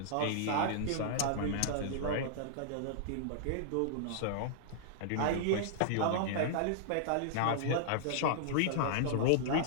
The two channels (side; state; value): both; different; correlation -0.01